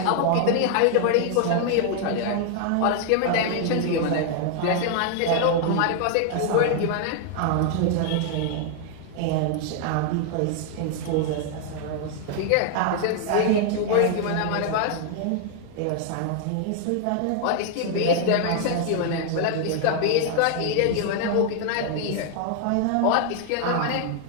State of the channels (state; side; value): different; both; correlation 0.00